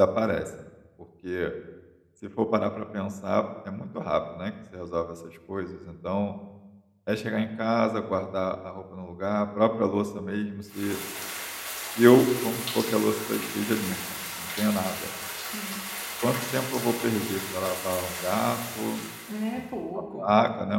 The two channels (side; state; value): both; identical; correlation 1.00